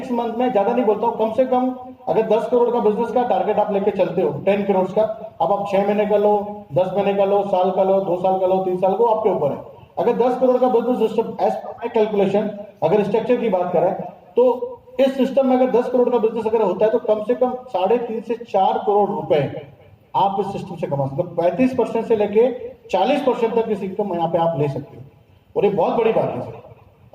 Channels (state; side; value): identical; both; correlation 1.00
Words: मंथ में, ज्यादा नहीं बोलता हूं, कम से कम अगर 10 करोड़ का बिजनेस का टारगेट आप लेके चलते हो, 10 करोड़ का, अब आप 6 महीने का लो, 10 महीने का लो, साल का लो, 2 साल का लो, 3 साल को आपके ऊपर है। अगर 10 करोड़ का business system as per my calculation, अगर स्ट्रक्चर की बात करें तो इस सिस्टम में अगर 10 करोड़ का बिजनेस अगर होता है तो कम से कम 3.5 से 4 करोड़ रुपए आप इस सिस्टम से कमा सकते हो। 35% से लेके 40% तक इस इनकम यहाँ पे आप ले सकते हो, और ये बहुत बड़ी बात है सर।